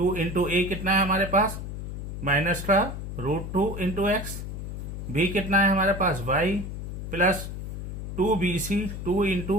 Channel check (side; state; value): left; noise; hum, 7 dB below the sound